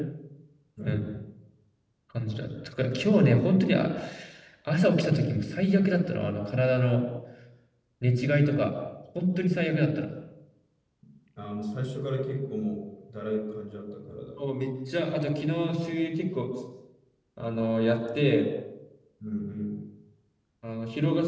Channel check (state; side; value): identical; both; correlation 1.00